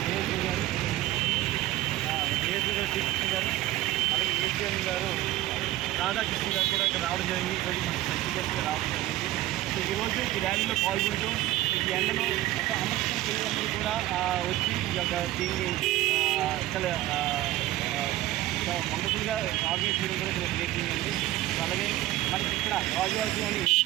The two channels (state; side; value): quieter; left; 15.6 dB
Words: ఏఎస్ఓ గారు శ్రీకృష్ణ గారు అలాగే ఏసీఎం గారు రాధాకృష్ణ గారు కూడా ఇక్కడ రావడం జరిగింది. ఈరోజు మనకి సర్టిఫికేట్గా రావడం జరిగింది. సో ఈరోజు ఈ ర్యాలీలో పాల్గొంటూ ఈ ఎండలో ఒక అమర్చిన పిల్లలందరూ కూడా వచ్చి ఈ యొక్క దీన్ని చాలా వండర్ఫుల్గా ఆర్గనైజ్ చేయడం కూడా చాలా గ్రేటింగ్ అండి. అలాగే మనకి ఇక్కడ రాజువాడలోని